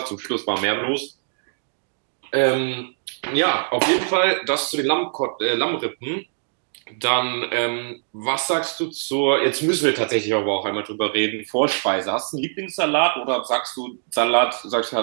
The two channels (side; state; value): left; silent; digital silence